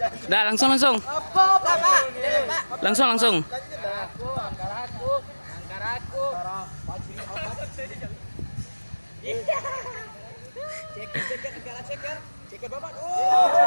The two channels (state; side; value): inverted; both; correlation -1.00